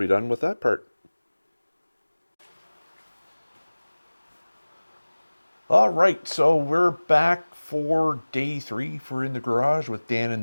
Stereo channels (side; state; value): both; inverted; correlation -1.00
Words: done with that part. All right, so we're back for day 3 for In the Garage with Dan